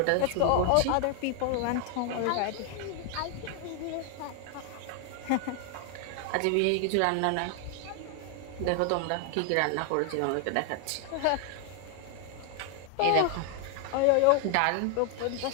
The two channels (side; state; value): both; different; correlation 0.00